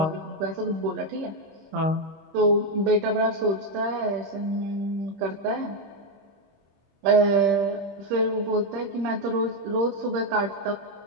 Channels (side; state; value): left; late; 25 ms